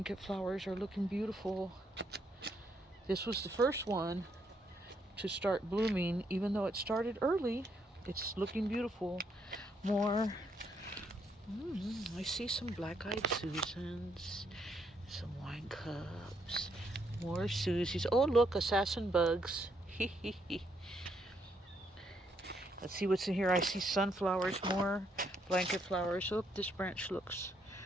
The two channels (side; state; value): both; normal; correlation 0.74